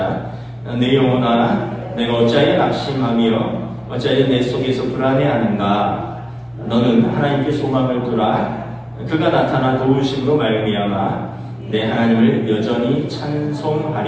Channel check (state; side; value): identical; both; correlation 1.00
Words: 내 영혼아, 내가 어찌하여 낙심하며 어찌하여 내 속에서 불안해하는가? 너는 하나님께 소망을 두라. 그가 나타나 도우심으로 말미암아 내 하나님을 여전히